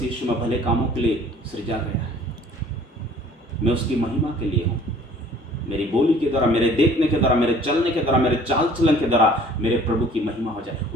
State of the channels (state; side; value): normal; both; correlation 0.52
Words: यीशु में भले कामों के लिए सृजा गया है। मैं उसकी महिमा के लिए हूँ। मेरी बोली के द्वारा, मेरे देखने के द्वारा, मेरे चलने के द्वारा, मेरे चाल चलन के द्वारा मेरे प्रभु की महिमा हो जाए,